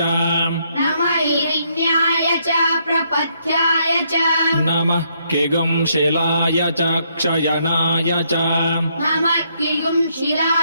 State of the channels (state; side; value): inverted; both; correlation -0.73